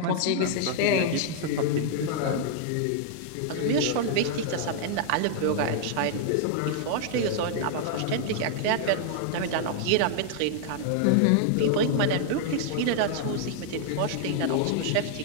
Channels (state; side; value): different; both; correlation -0.01